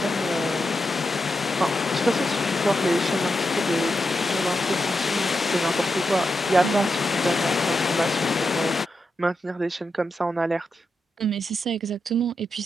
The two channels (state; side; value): normal; both; correlation 0.87